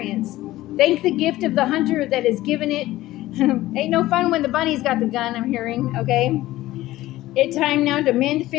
Thank the gift of the hunter that is given it. Ain't no fun when the bunny's got the gun, I'm hearing, okay? It's time now to mend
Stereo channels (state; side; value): quieter; right; 16.3 dB